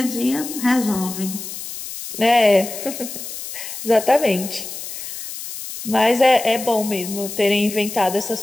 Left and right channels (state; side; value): noise; left; hiss, 9 dB below the sound